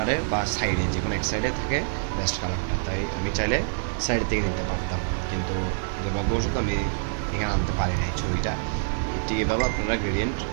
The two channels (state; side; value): silent; left; digital silence